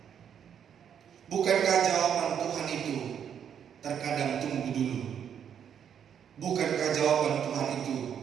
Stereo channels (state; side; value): quieter; left; 8.5 dB